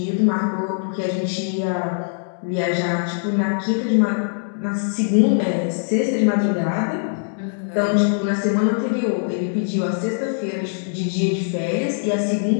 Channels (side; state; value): right; silent; digital silence